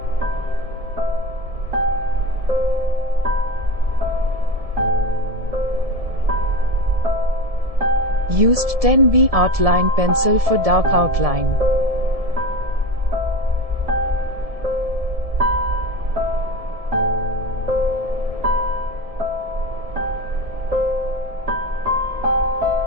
Used 10B Artline pencil for dark outline.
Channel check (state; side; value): late; left; 1.7 ms